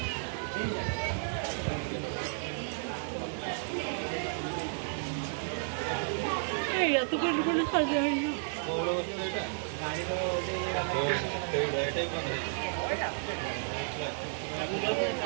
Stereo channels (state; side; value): silent; left; digital silence